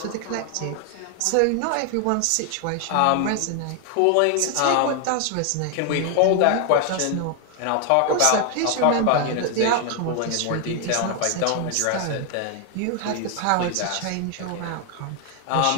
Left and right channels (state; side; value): different; both; correlation 0.00